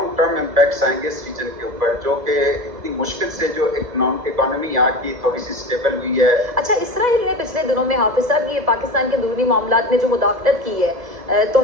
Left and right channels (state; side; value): late; left; 2.0 ms